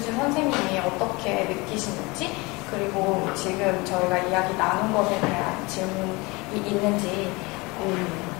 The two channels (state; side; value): quieter; right; 25.0 dB